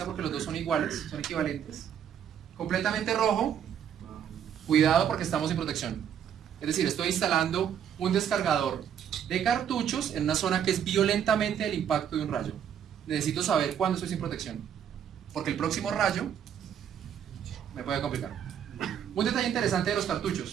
porque los dos son iguales, son equivalentes. Completamente rojo, cuidado porque estamos sin protección. Es decir, estoy instalando un descargador de cartuchos en una zona que es violentamente el impacto de un rayo. Necesito saber cuándo estoy sin protección, porque el próximo rayo me puede complicar. Un detalle interesante de los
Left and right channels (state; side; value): quieter; left; 8.9 dB